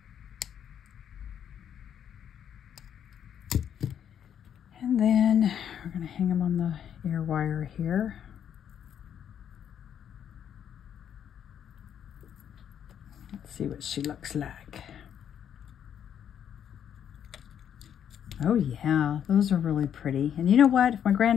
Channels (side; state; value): right; quieter; 9.0 dB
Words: And then we're going to hang them on the ear wire here. Let's see what she looks like. Oh yeah, those are really pretty. And you know what? If my